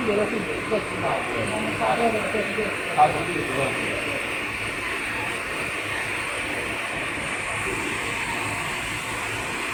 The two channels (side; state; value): both; identical; correlation 1.00